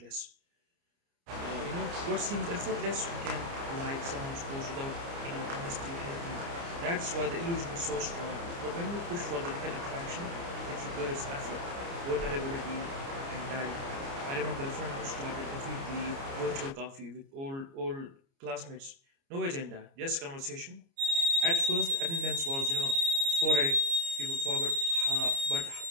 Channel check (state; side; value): late; left; 29 ms